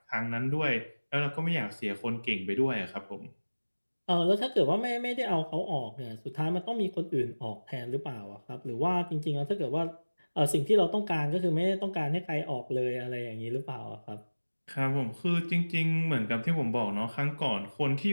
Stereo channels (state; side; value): inverted; both; correlation -1.00